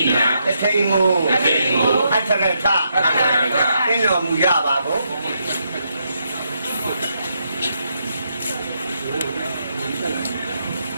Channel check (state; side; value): inverted; both; correlation -0.79